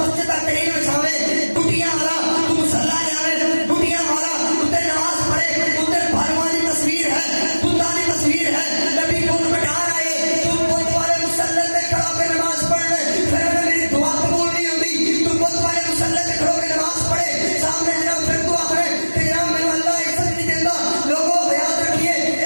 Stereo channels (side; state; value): both; inverted; correlation -1.00